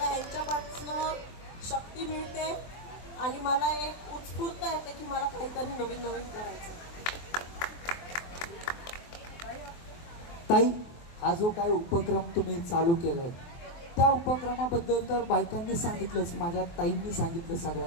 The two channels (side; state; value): right; late; 23 ms